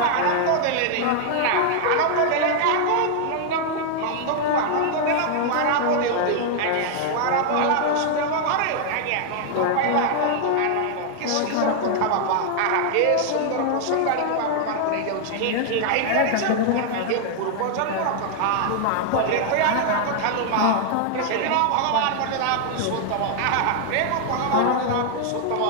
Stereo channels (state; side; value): different; both; correlation 0.00